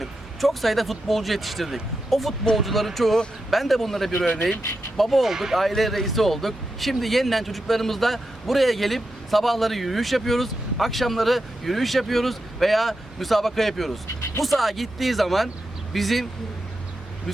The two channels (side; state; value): both; normal; correlation 0.88